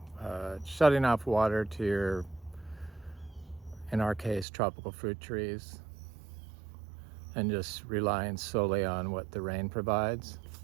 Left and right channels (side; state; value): left; drops out; at 4.5 s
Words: shutting off water to your, in our case, tropical fruit trees, and just relying solely on what the rain provides